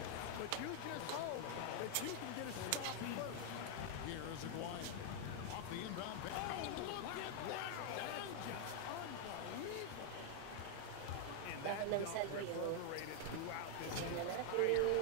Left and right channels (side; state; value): both; different; correlation 0.00